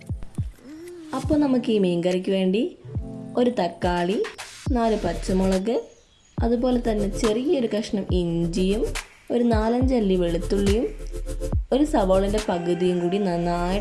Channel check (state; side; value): identical; both; correlation 1.00